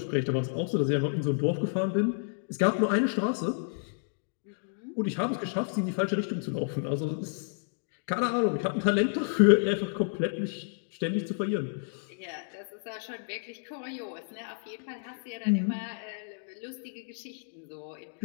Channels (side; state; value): right; silent; digital silence